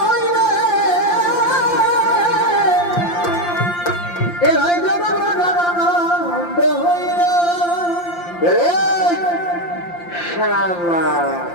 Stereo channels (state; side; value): late; right; 5.7 ms